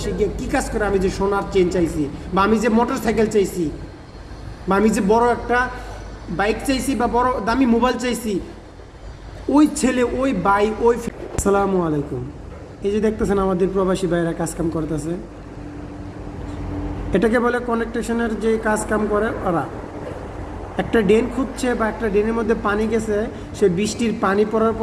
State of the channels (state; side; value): identical; both; correlation 1.00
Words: গিয়ে কী কাজ করে আমি যে সোনার চেন চাইছি, বা আমি যে মোটর সাইকেল চাইছি, বা আমি যে বড় একটা বাইক চাইছি, বা বড় দামি মোবাইল চাইছি, ওই ছেলে, ওই ভাই, ওই। আসসালামু আলাইকুম। এই যে দেখতেছেন আমাদের প্রবাসী ভাইরা কাজকাম করতেছে, এটাকে বলে কানেকটেশনের যে কাজকাম করে ওরা। একটা ড্রেন খুঁজছে বা একটা ড্রেনের মধ্যে পানি গেছে, সে বৃষ্টির পানি পড়ার